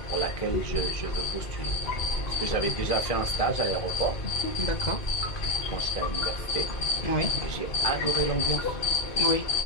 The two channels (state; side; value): late; right; 2.2 ms